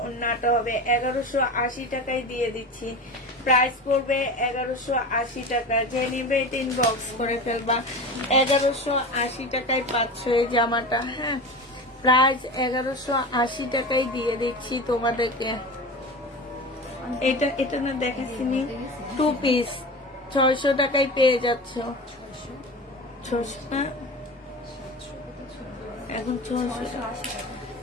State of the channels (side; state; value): both; normal; correlation 0.30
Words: ওড়নাটা হবে। 1180 টাকায় দিয়ে দিচ্ছি। প্রাইস পড়বে 1180 টাকা। যে নিবে এটা ইনবক্স করে ফেলবা। 1180 টাকায় পাচ্ছ এই জামাটা, হ্যাঁ, প্রাইস 1180 টাকায় দিয়ে দিচ্ছি তোমাদেরকে। এটা না দেখাচ্ছি, 2 পিস 600 টাকায় পেয়ে যাচ্ছ। 600 না, এখন